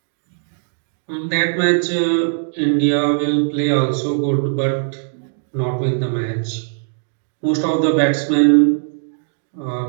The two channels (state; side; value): silent; left; digital silence